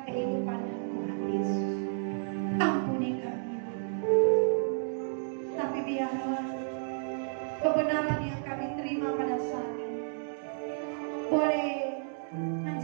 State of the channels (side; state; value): left; silent; digital silence